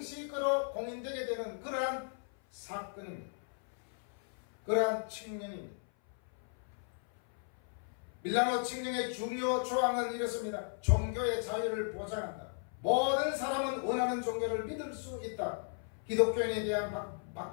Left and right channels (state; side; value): silent; right; 54 dB below the other